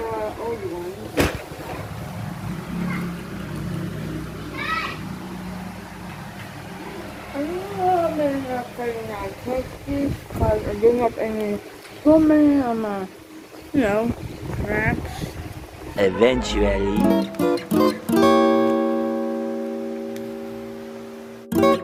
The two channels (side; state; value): both; identical; correlation 1.00